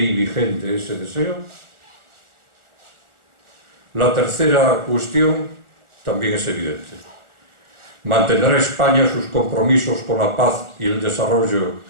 vigente ese deseo? La tercera cuestión también es evidente. ¿Mantendrá España sus compromisos con la paz y el desarrollo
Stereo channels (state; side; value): late; left; 1.4 ms